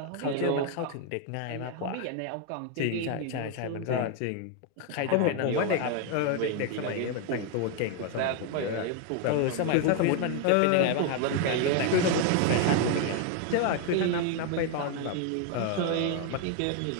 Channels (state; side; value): different; both; correlation 0.01